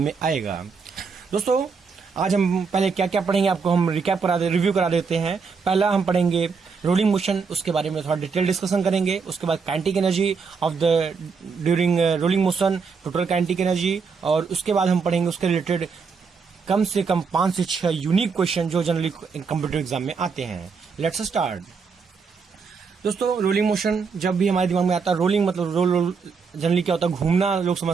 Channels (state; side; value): quieter; left; 5.3 dB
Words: में आएगा। दोस्तों, आज हम पहले क्या क्या पढ़ेंगे आपको हम रिव्यू करा देते हैं। पहला हम पढ़ेंगे रोलिंग मोशन, उसके बारे में थोड़ा डिटेल डिस्कशन करेंगे। उसके बाद kinetic energy of the during rolling motion, total kinetic energy, और उसके बाद हम पढ़ेंगे उसके रिलेटेड कम से कम 5 से 6 यूनिक क्वेश्चन जो जनरली कंप्यूटर एग्जाम में आते हैं। Let's start. दोस्तों, रोलिंग मोशन जब भी हमारे दिमाग में आता है, रोलिंग मतलब रोल जनरली क्या होता है, घूमना लोग